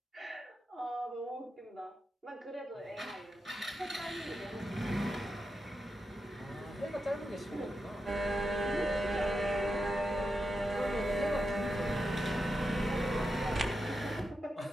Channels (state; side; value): normal; both; correlation 0.87